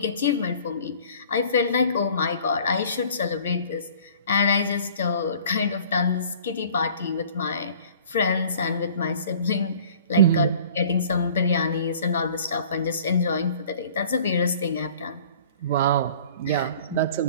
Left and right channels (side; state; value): both; inverted; correlation -0.49